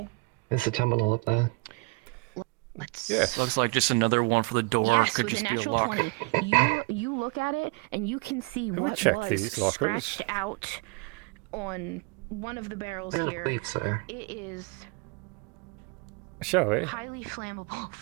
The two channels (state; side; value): quieter; left; 30.2 dB